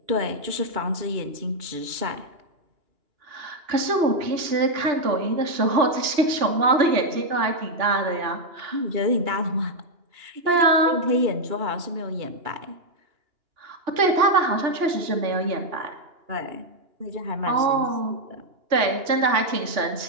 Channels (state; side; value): late; left; 2.9 ms